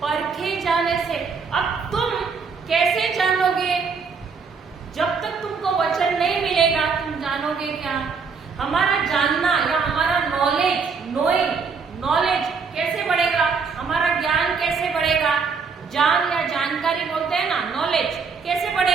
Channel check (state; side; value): quieter; left; 5.3 dB